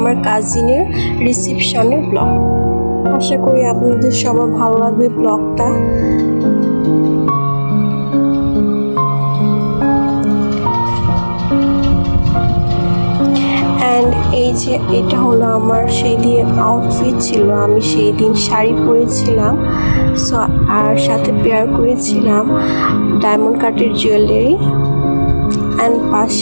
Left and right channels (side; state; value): both; inverted; correlation -1.00